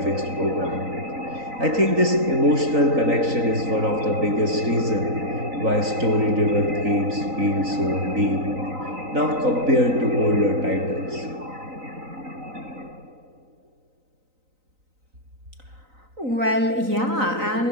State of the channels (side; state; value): left; late; 3.9 ms